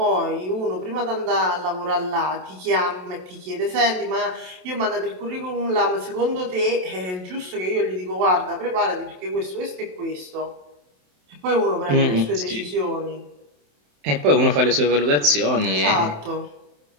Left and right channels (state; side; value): late; left; 27 ms